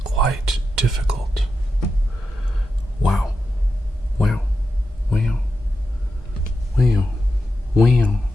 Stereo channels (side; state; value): both; normal; correlation 0.88